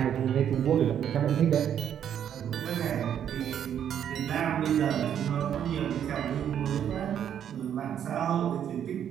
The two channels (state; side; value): quieter; left; 9.4 dB